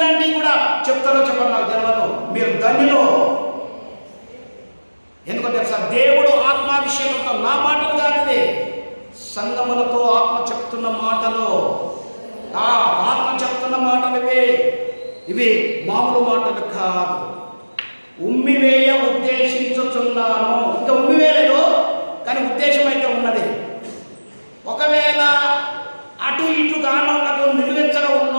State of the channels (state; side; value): inverted; both; correlation -1.00